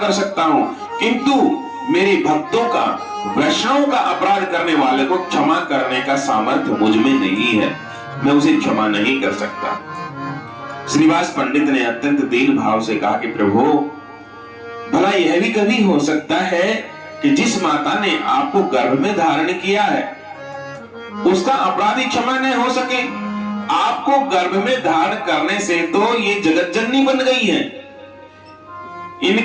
सकता हूं, किंतु मेरे भक्तों का, वैष्णव का अपराध करने वाले को क्षमा करने का सामर्थ्य मुझ में नहीं है। मैं उसे क्षमा नहीं कर सकता। श्रीवास पंडित ने अत्यंत दीन भाव से कहा कि प्रभु, भला यह भी कभी हो सकता है कि जिस माता ने आपको गर्भ में धारण किया है उसका अपराधी क्षमा नहीं हो सके? आपको गर्भ में धारण करने से तो ये जगत जननी बन गई है।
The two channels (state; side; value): identical; both; correlation 1.00